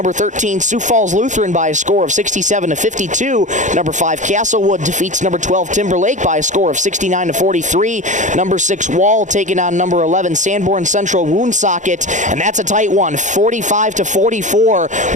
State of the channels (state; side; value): late; left; 0.36 ms